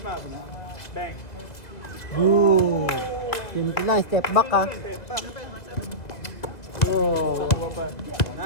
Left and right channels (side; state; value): right; late; 2.1 ms